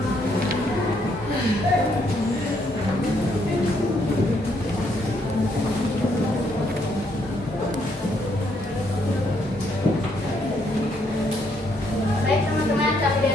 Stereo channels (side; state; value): both; normal; correlation 0.72